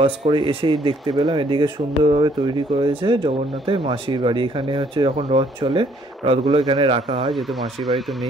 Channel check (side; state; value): both; normal; correlation 0.64